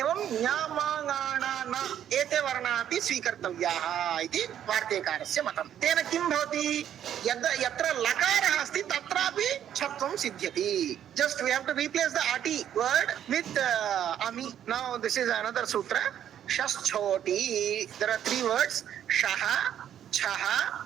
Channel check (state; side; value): quieter; left; 10.2 dB